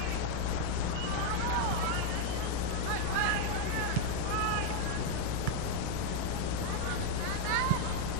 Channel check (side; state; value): both; different; correlation 0.01